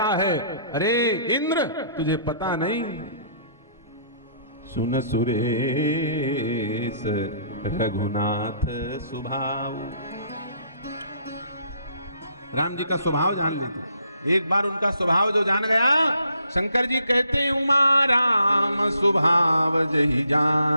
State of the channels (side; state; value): both; inverted; correlation -0.67